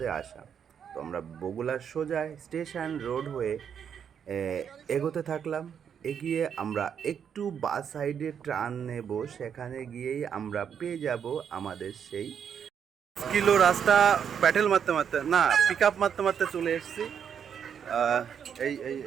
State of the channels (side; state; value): left; quieter; 7.9 dB